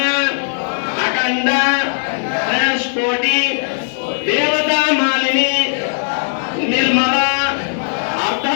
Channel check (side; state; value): right; silent; digital silence